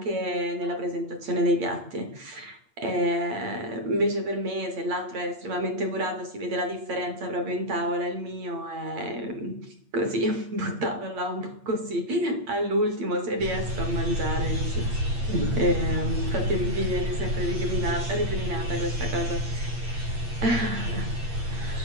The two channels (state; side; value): late; left; 8.6 ms